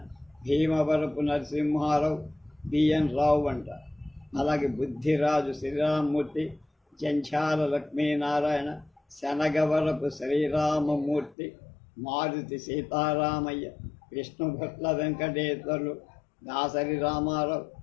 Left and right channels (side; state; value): right; drops out; at 11.4 s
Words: భీమవరపు నరసింహారావు, బిఎన్ రావు అంటారు. అలాగే బుద్ధిరాజు శ్రీరామమూర్తి, జంఛాల లక్ష్మీనారాయణ, శనగవరపు శ్రీరామమూర్తి, మారుతి సీతారామయ్య, విష్ణుభట్ల వెంకటేశ్వర్లు, దాసరి రామారావు,